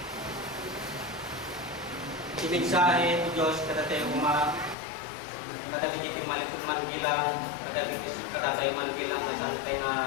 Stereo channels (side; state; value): right; drops out; at 4.8 s